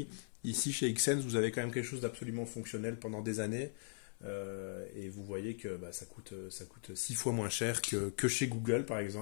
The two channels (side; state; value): right; silent; 51 dB below the other